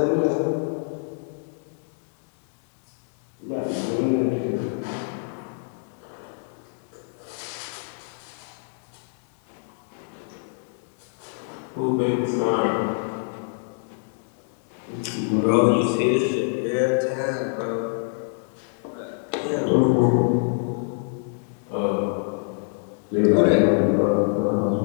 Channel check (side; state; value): right; silent; 61 dB below the other